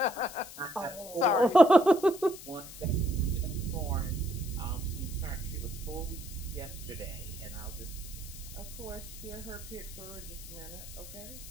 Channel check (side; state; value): left; noise; hiss, 14 dB below the sound